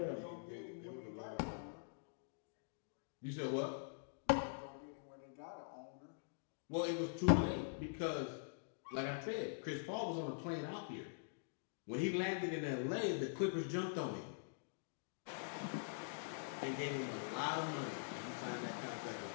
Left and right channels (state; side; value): silent; right; digital silence